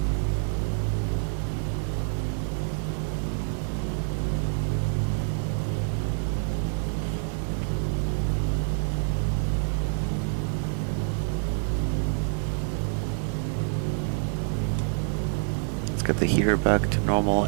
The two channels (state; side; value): silent; left; 60 dB below the other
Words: Got the heater back to normal,